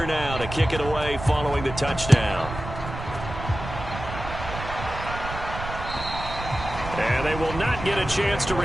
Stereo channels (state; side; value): noise; right; rumble, 9 dB below the sound